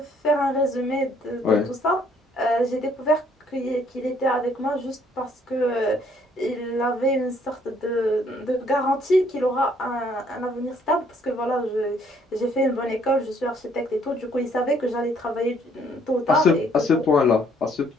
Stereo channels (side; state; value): both; normal; correlation 0.64